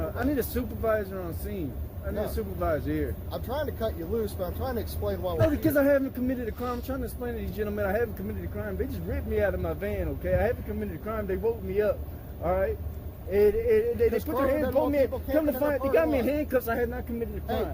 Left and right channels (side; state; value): both; identical; correlation 1.00